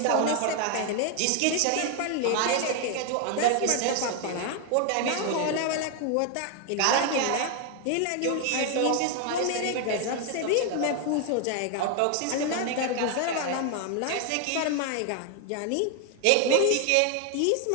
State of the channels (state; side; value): different; both; correlation 0.01